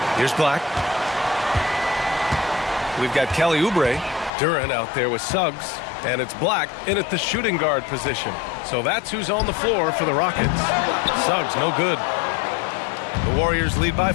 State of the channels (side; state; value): right; drops out; at 4.3 s